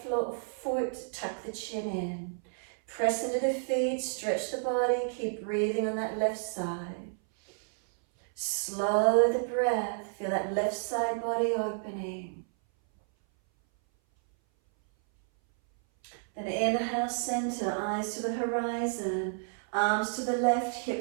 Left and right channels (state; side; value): silent; left; 57 dB below the other